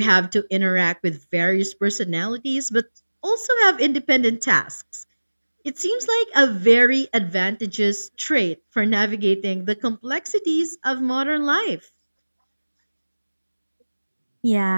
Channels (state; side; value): inverted; both; correlation -1.00